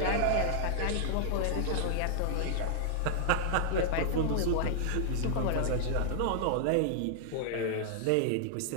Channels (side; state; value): both; different; correlation -0.01